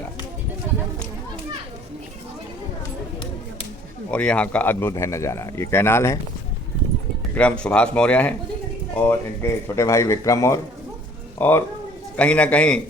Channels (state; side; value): normal; both; correlation 0.55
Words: और यहाँ का अद्भुत है नज़ारा। ये कैनाल है, विक्रम सुभाष मौर्य हैं और इनके छोटे भाई विक्रम और कहीं ना कहीं